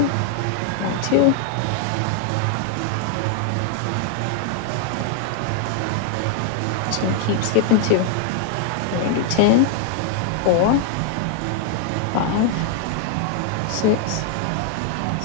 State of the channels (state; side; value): different; both; correlation 0.00